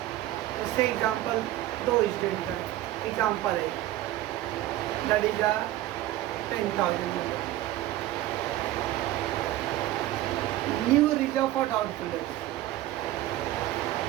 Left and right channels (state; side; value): quieter; left; 14.8 dB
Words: उससे एग्जाम्पल 2 स्टूडेंट का एग्जाम्पल है, that is 10,000 new reserve for doubtful dates